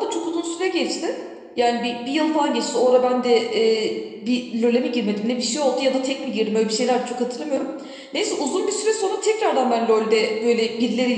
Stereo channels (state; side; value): identical; both; correlation 1.00